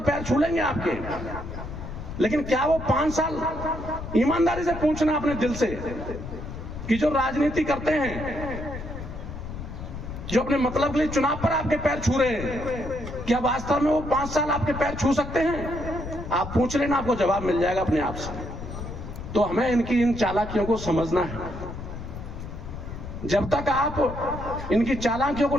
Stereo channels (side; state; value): left; noise; rumble, 9 dB below the sound